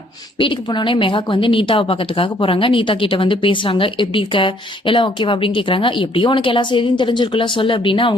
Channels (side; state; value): both; normal; correlation 0.64